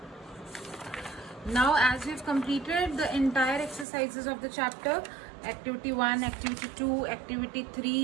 Now, as we've completed the entire exercises of the chapter, activity 1, activity 2, activity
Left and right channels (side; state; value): left; drops out; at 3.9 s